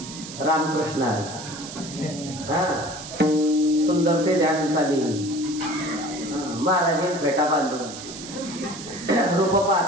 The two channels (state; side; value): noise; right; hiss, 12 dB below the sound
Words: रामकृष्ण सुंदर ते ध्यान चालेल. महाराजे फेटा बांधून रूप